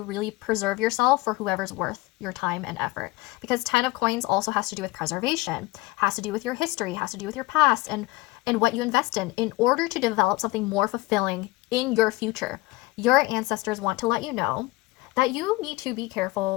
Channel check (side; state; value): right; quieter; 20.8 dB